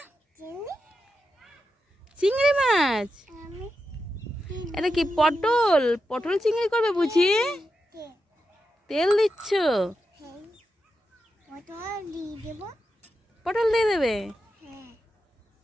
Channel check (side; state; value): both; normal; correlation 0.88